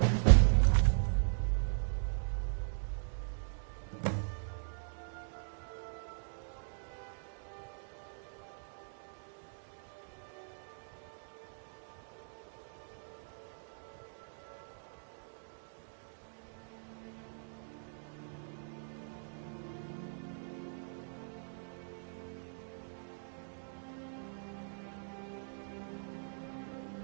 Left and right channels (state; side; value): silent; left; digital silence